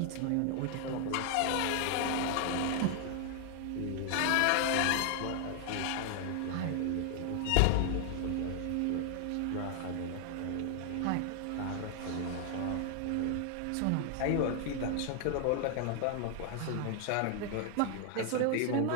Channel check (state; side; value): different; both; correlation 0.00